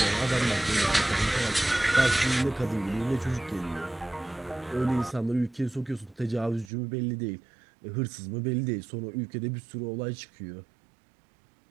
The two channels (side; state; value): left; drops out; at 6.7 s